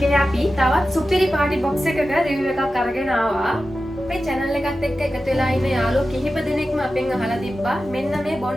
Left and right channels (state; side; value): normal; both; correlation 0.93